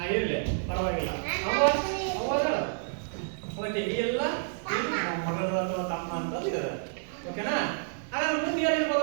ಇರ್ಲಿ, ಪರವಾಗಿಲ್ಲ. ಓಕೆ, ಈ ಎಲ್ಲ ಮಗಳು ಅಥವಾ ತಮ್ಮ ಅಂತ ಇದಾರೆ. ಓಕೆನಾ? ಹಾಗಾದ್ರೆ ಮುಂದೆ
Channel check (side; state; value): left; silent; 58 dB below the other